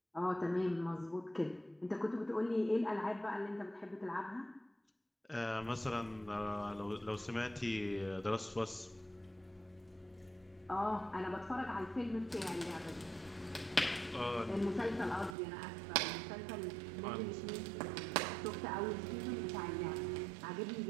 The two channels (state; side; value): drops out; left; at 15.4 s